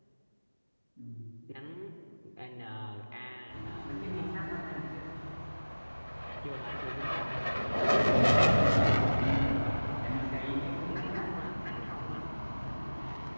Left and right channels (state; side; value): inverted; both; correlation -1.00